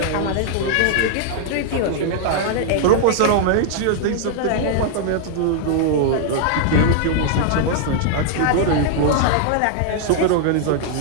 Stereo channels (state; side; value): different; both; correlation -0.01